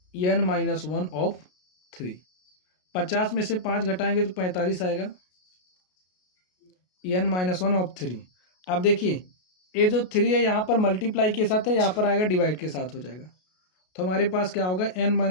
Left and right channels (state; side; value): late; right; 33 ms